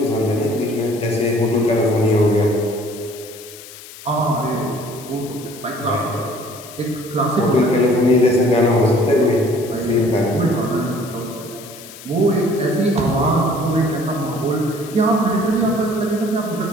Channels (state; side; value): noise; left; hiss, 17 dB below the sound